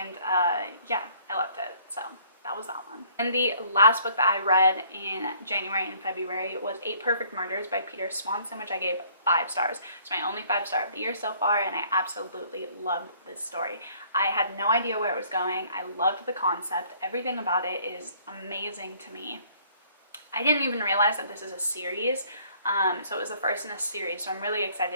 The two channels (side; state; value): both; inverted; correlation -0.60